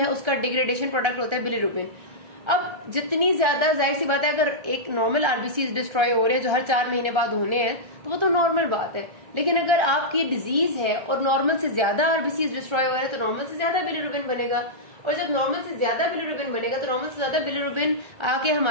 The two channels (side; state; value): left; late; 1.3 ms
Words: उसका डिग्रेडेशन प्रोडक्ट होता है बिलिरुबिन। अब जितनी ज्यादा, जाहिर सी बात है अगर एक नॉर्मल आरबीसी डिस्ट्रॉय हो रहे हैं जो हर 4 महीने बाद होने हैं तो वो तो नॉर्मल बात है। लेकिन अगर आपकी डिजीज है और नॉर्मल से ज्यादा आरबीसी डिस्ट्रॉय हो रहे हैं तो नॉर्मल से ज्यादा बिलिरुबिन बनेगा, और जब नॉर्मल से ज्यादा बिलिरुबिन बनेगा तो नॉर्मल से ज्यादा बिलिरुबिन आके